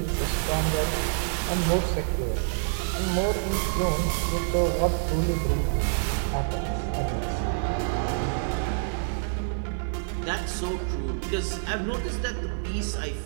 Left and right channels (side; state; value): left; silent; digital silence